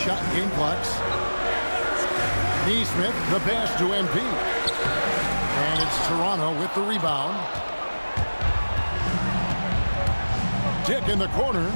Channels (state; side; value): inverted; both; correlation -1.00